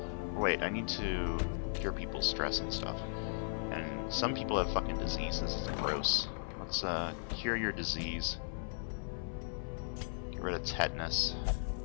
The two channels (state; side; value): silent; right; 53 dB below the other